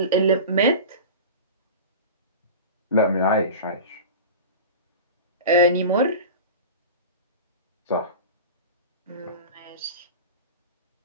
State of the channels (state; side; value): inverted; both; correlation -0.31